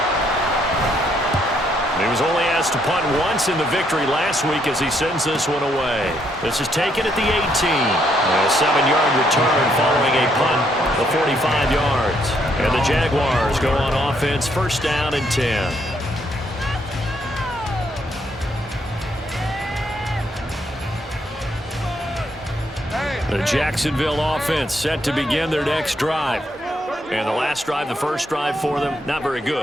He was only asked to punt once in the victory last week as he sends this one away. This is taken at the 18. A 7-yard return following a punt. 45 yards. And the Jaguars go on offense, first down and 10. The Jacksonville offense set to begin their next drive. And the last drive, the first drive for them, not very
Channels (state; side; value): normal; both; correlation 0.73